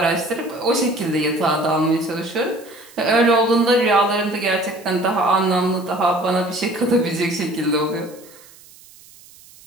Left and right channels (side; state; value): right; noise; hiss, 24 dB below the sound